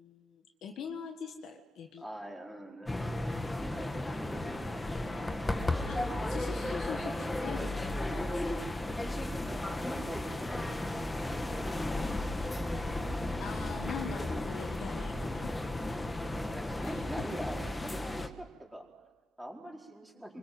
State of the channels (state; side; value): normal; both; correlation 0.92